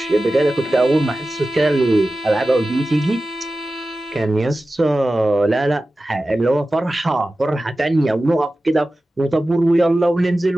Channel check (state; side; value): normal; both; correlation 0.95